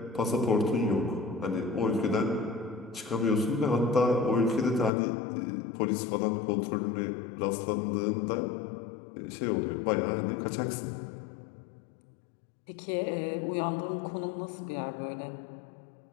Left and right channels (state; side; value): drops out; right; at 4.9 s